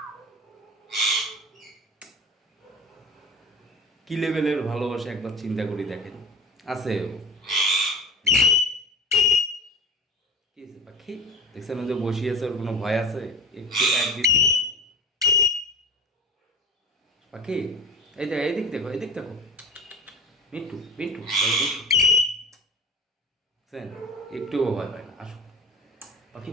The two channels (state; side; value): normal; both; correlation 0.35